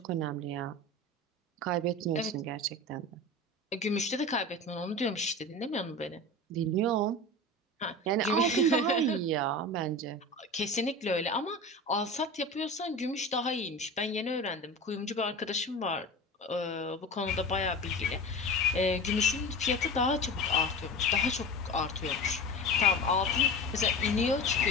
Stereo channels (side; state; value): both; normal; correlation 0.31